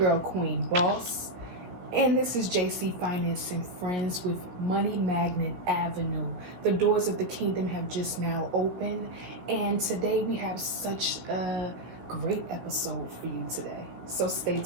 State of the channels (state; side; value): late; left; 17 ms